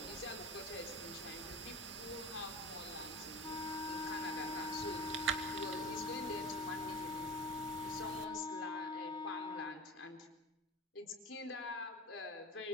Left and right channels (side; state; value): both; normal; correlation 0.33